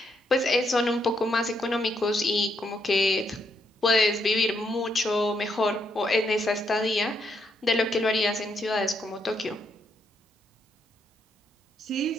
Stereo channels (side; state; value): both; normal; correlation 0.77